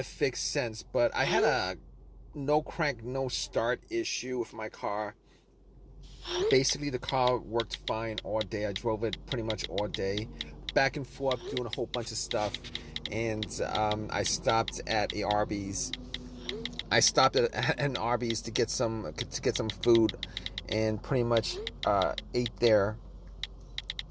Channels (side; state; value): both; identical; correlation 1.00